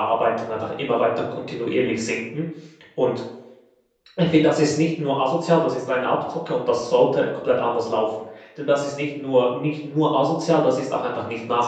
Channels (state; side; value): identical; both; correlation 1.00